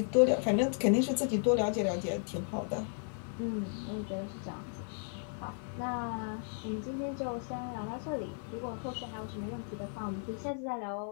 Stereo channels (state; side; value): silent; right; 55 dB below the other